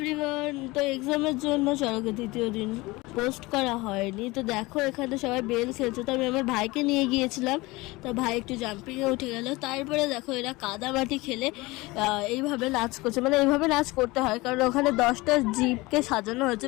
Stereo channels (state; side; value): quieter; right; 22.0 dB